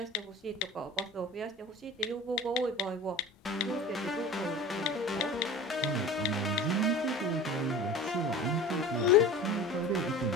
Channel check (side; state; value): both; normal; correlation 0.37